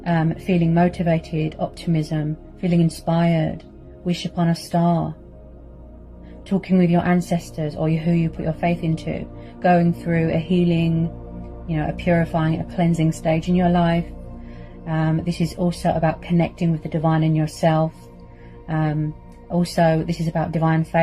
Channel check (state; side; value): identical; both; correlation 1.00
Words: feeling motivated, optimism, feeling inspired, wish upon a star, talking with your ancestors or who you put your faith into, going through a healing, you know, a purifying, a cleansing stage in your life. This is also about connecting with the divine in yourself, Also, this is about divine